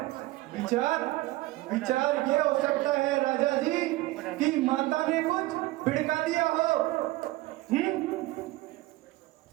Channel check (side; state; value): left; quieter; 18.3 dB